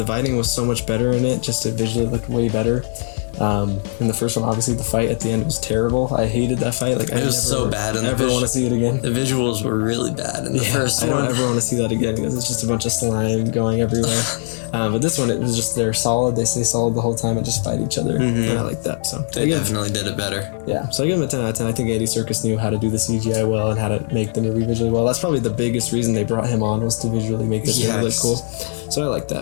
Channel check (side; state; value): right; silent; 66 dB below the other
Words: fighting was so much better in it. Just it visually looked way better. In the first one, obviously the fight at the end was terrible. I hated that fight. Like it was so bad. I never want to see it again. The visuals were really bad in the first one. I don't ever want to see that again because it's just a bunch of slime going everywhere. But this one, it was just they're solid. They stay solid the whole time and just fight each other, and I like that. So they definitely did it better. Yeah, so I give them a 10 out of 10. I think Andy Serkis knew how to do the CGI well and how to make the movie visually well. That's probably the biggest reason they brought him on was to visually make this movie look cool. So I like